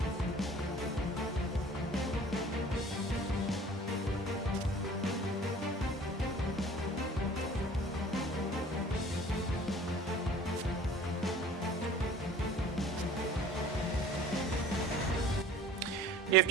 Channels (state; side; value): normal; both; correlation 0.47